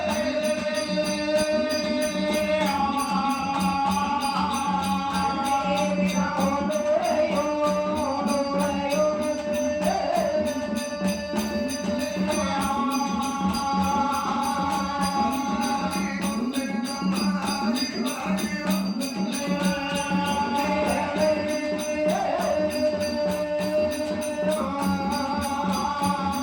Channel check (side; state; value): both; identical; correlation 1.00